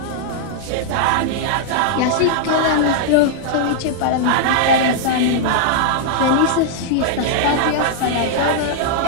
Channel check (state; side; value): different; both; correlation -0.01